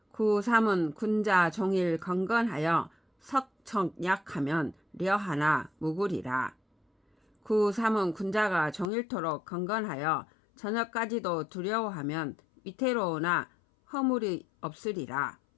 구삼은 군자 종일 건건하여 석청약하면 려하나 무구리라. 구삼은 군자가 종일토록 건건하여 저녁까지도 두려워하면 위태로우나 허물이 없으리라.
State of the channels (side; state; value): right; drops out; at 8.8 s